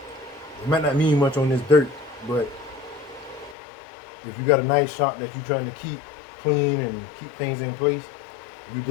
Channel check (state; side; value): drops out; right; at 3.6 s